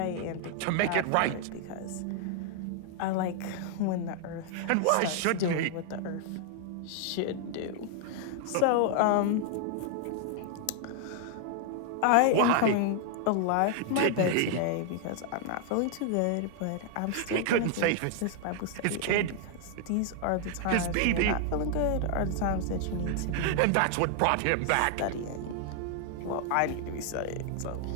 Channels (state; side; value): different; both; correlation 0.00